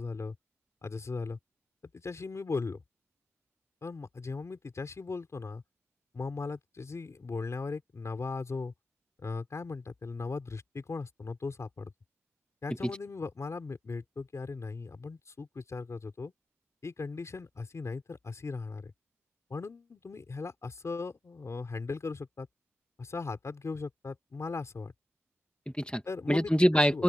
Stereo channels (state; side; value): normal; both; correlation 0.92